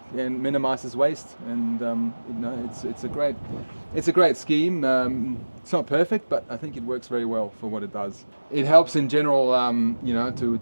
and minimizes waste. And it's a great scheme. It's not perfect, but I think it works very well for what it does. It helps in general,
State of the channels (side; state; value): both; inverted; correlation -1.00